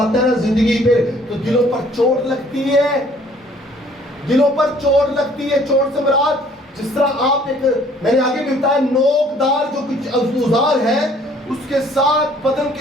ہے نا زندگی پہ تو دلوں پر چوٹ لگتی ہے، دلوں پر چوٹ لگتی ہے۔ چوٹ سے مراد جس طرح آپ میں نے آگے بھی بتایا، نوکدار جو کچھ اوزار ہے اس کے ساتھ بدن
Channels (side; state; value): both; normal; correlation 0.58